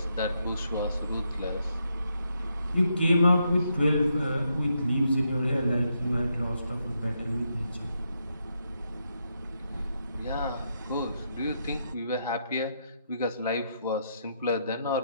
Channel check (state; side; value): inverted; both; correlation -0.80